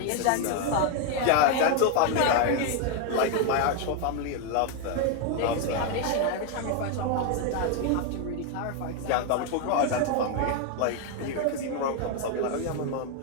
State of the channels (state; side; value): different; both; correlation 0.01